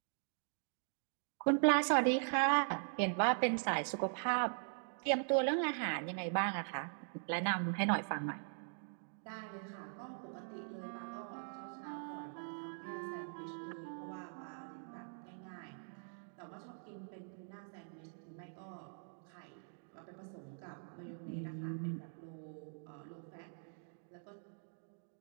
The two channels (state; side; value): silent; left; digital silence